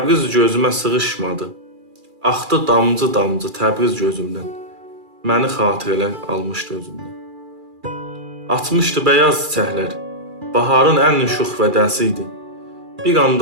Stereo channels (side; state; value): left; late; 2.4 ms